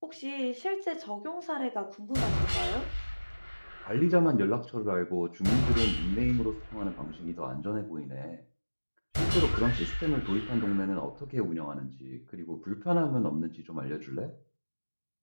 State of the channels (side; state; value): both; inverted; correlation -1.00